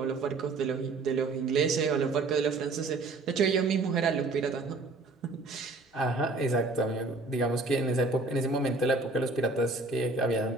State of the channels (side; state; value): left; quieter; 3.4 dB